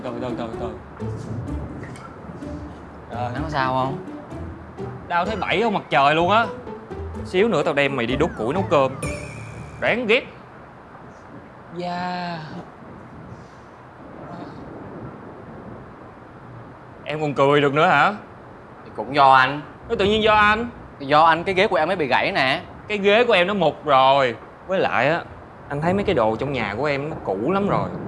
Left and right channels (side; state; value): both; identical; correlation 1.00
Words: Anh có sao không? Đau thấy bảy không mặt trời luôn á. Xíu nữa tao đem mày đi đốt củi nấu cơm. Đáng ghét. Da. Em còn cười được nữa hả? Thì cũng do anh. Nó tự nhiên do anh. Thì do anh cái ghế của em mới bị gãy nè. Cái ghế của em nó mục rồi. Với lại á, anh thấy mấy cái đồ trong nhà của em nó cũ lắm rồi.